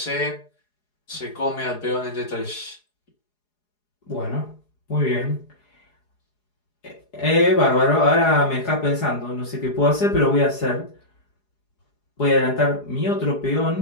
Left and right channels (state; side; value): late; right; 4.8 ms